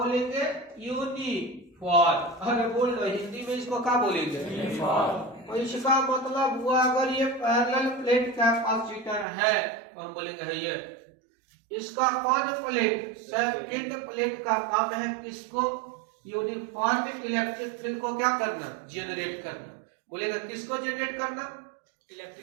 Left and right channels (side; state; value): left; drops out; at 9.2 s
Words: यूनिफॉर्म। अरे बोलना हिंदी में इसको क्या बोलेंगे? यूनिफॉर्म। तो इसका मतलब हुआ अगर ये पैरेलल प्लेट कैपेसिटर है तो हम बोलेंगे है ये। इसका कौन प्लेट? सेकंड प्लेट का काम है किसको? यूनिफॉर्म इलेक्ट्रिक फील्ड को क्या करना? जनरेट करना। बोलेगा किसको जनरेट करना?